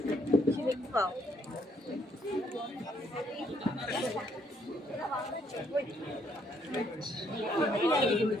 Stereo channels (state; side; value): normal; both; correlation 0.70